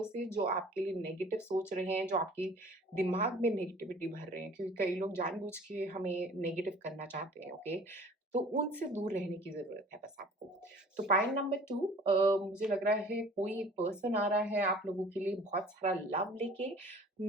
से जो आपके लिए नेगेटिव सोच रहे हैं, जो आपके दिमाग में नेगेटिविटी भर रहे हैं, क्योंकि कई लोग जानबूझ के हमें नेगेटिव करना चाहते हैं, ओके? तो उनसे दूर रहने की ज़रूरत है बस आपको। तो पॉइंट नंबर 2, मुझे लग रहा है कोई एक पर्सन आ रहा है आप लोगों के लिए बहुत सारा लव लेके,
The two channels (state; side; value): normal; both; correlation 0.48